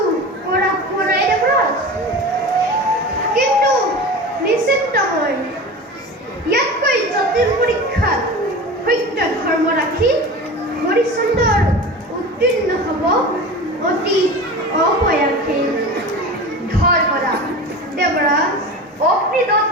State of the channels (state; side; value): normal; both; correlation 0.32